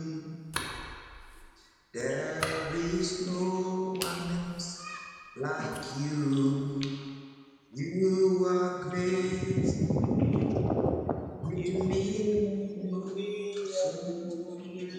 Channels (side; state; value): both; identical; correlation 1.00